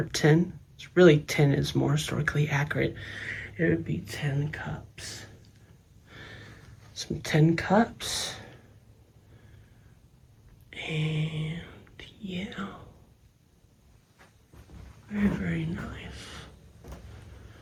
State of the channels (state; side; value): identical; both; correlation 1.00